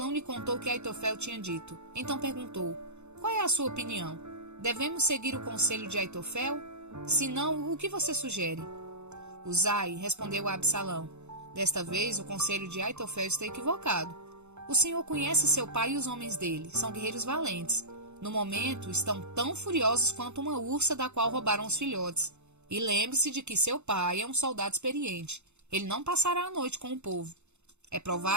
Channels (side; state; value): left; late; 0.82 ms